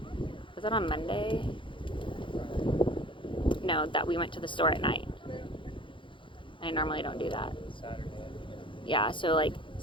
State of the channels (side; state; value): right; late; 0.24 ms